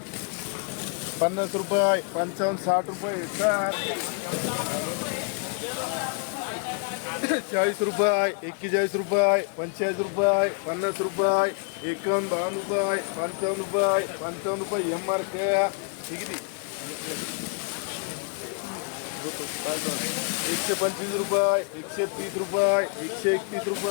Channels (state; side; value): quieter; right; 39.8 dB